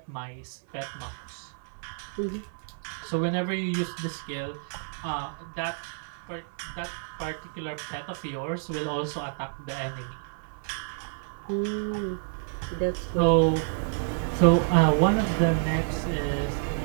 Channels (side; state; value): left; silent; 59 dB below the other